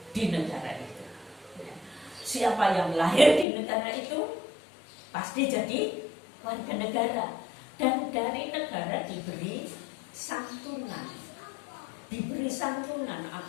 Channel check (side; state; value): right; drops out; at 3.5 s